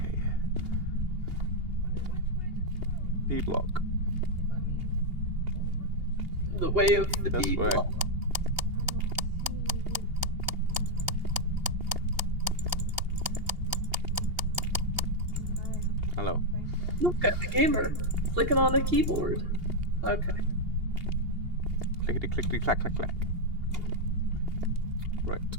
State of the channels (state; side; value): late; left; 2.8 ms